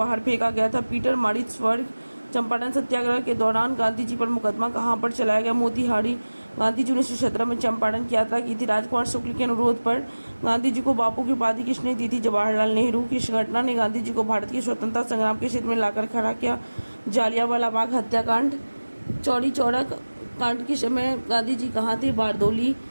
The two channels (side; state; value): both; inverted; correlation -1.00